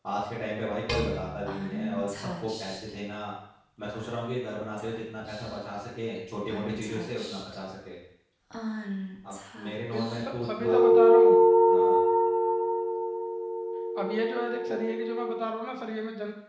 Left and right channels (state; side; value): identical; both; correlation 1.00